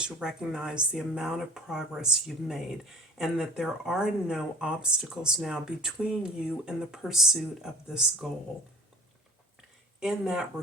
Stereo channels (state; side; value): normal; both; correlation 0.45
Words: recognize the amount of progress you've made, and that there are no obstacles now between you and the pursuit of this goal. In that